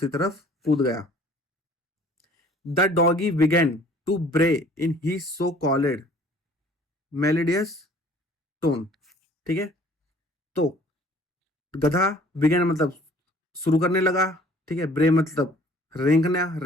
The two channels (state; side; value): normal; both; correlation 0.53